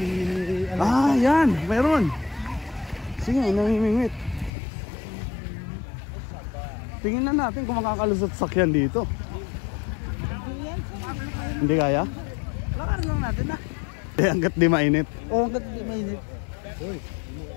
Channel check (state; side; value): drops out; right; at 4.5 s